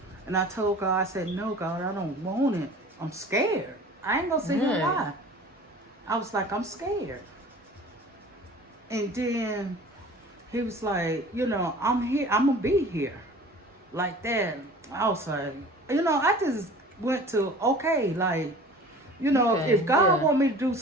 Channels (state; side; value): normal; both; correlation 0.43